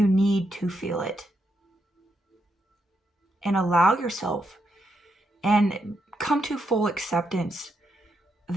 need to feel it. And allow yourself and come to full acceptance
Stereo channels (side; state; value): both; normal; correlation 0.81